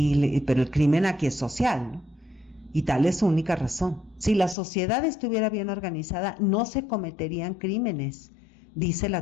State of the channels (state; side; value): drops out; right; at 4.5 s